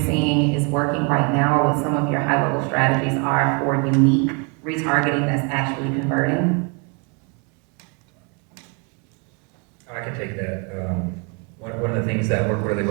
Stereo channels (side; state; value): left; quieter; 33.6 dB